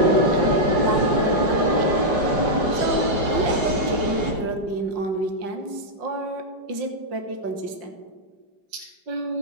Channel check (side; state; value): left; late; 5.6 ms